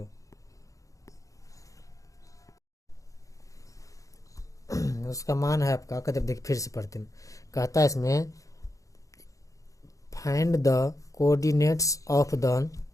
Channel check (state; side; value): late; right; 0.16 ms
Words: उसका मान है आपका, कहते देखिए फिर से पढ़ते हैं। कहता है इसमें find the coordinates of the